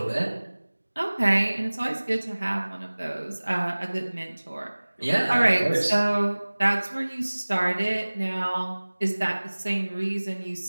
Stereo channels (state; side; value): inverted; both; correlation -1.00